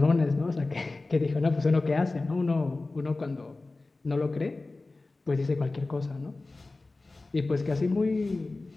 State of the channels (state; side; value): quieter; right; 3.3 dB